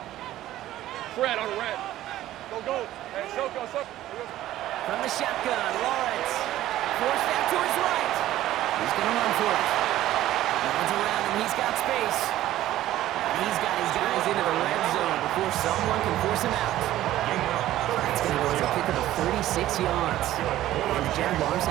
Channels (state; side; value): quieter; left; 14.1 dB